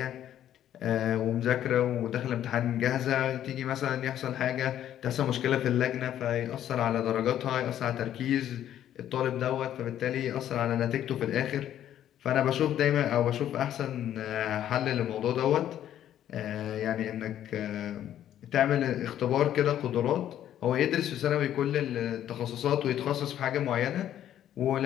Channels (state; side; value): quieter; right; 11.2 dB